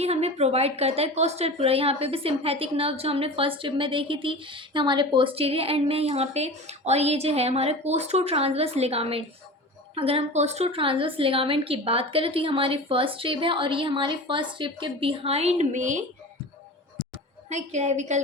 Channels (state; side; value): normal; both; correlation 0.33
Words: हमें प्रोवाइड करता है कोस्टल प्लूरा। यहाँ पे भी सिम्पैथिक नर्व जो हमने फर्स्ट ट्रिप में देखी थी हमारे पोस्टीरियर एंड में यहाँ पे, और ये जो है हमारे कोस्टो ट्रांसवर्स लिगामेंट। अगर हम कोस्टो ट्रांसवर्स लिगामेंट की बात करें तो ये हमारी फर्स्ट ट्रिप है, और ये हमारी फर्स्ट ट्रिप के बिहाइंड में है, क्लेविकल